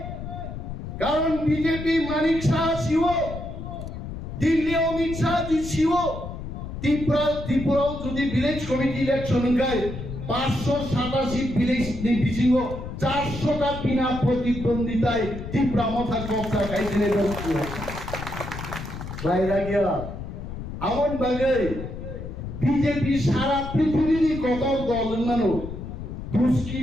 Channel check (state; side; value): noise; left; rumble, 8 dB below the sound